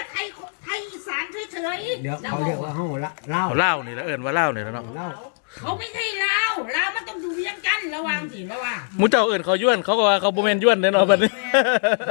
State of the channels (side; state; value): right; silent; digital silence